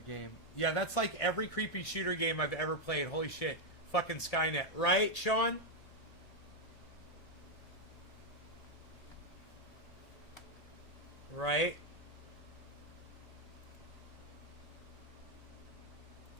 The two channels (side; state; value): right; late; 1.7 ms